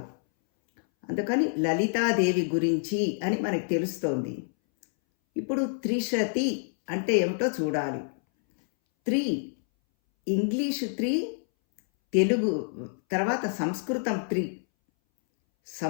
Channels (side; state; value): right; silent; 60 dB below the other